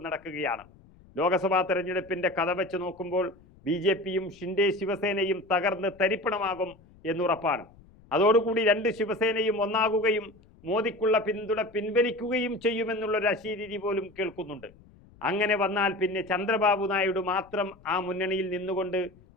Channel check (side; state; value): left; noise; rumble, 26 dB below the sound